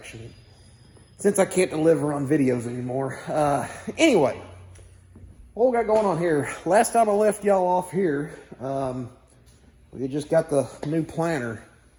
since I can't deliver on videos anymore. Anyway, what we got going on here? Last time I left y'all off here, we just got the new planter,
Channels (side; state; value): both; identical; correlation 1.00